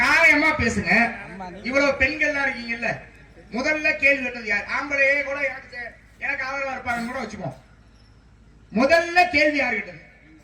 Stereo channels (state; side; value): identical; both; correlation 1.00